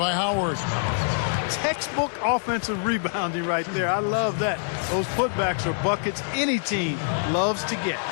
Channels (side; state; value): right; silent; digital silence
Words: Howard. Textbook offensive rebounding right there. I love that. Those putbacks are buckets any team loves to get.